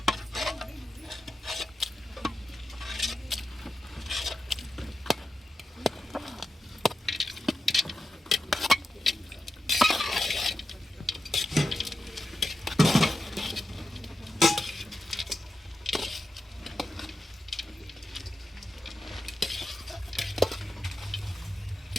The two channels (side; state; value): both; normal; correlation 0.90